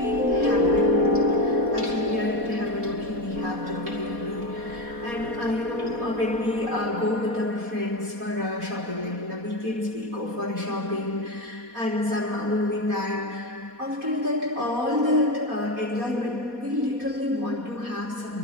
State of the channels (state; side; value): late; left; 4.2 ms